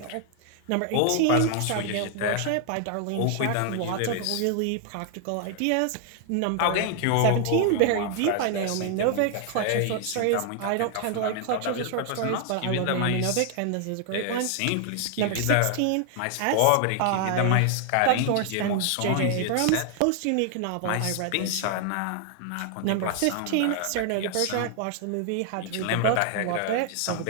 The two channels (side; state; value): both; different; correlation 0.00